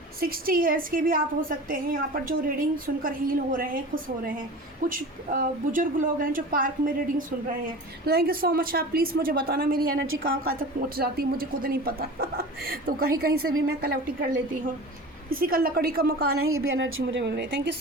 60 ईयर्स के भी आप हो सकते हैं यहाँ पर, जो रीडिंग सुनकर हील हो रहे हैं, खुश हो रहे हैं। कुछ बुजुर्ग लोग हैं जो पार्क में रीडिंग सुन रहे हैं। तो थैंक यू सो मच। आप प्लीज़ मुझे बताना मेरी एनर्जी कहाँ कहाँ तक पहुँच जाती है, मुझे खुद नहीं पता तो कहीं कहीं से भी मैं कलेक्ट कर लेती हूँ। किसी का लकड़ी का मकान है, ये भी एनर्जी मुझे मिल रही है। Thank you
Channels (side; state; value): both; normal; correlation 0.35